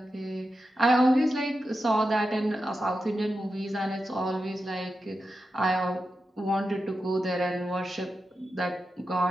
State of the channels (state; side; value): normal; both; correlation 0.90